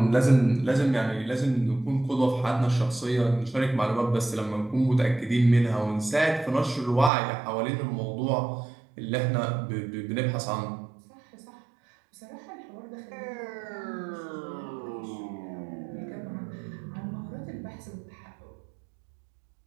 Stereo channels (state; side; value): drops out; left; at 7.1 s